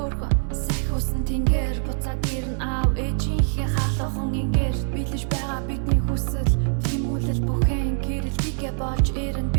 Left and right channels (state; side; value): silent; left; digital silence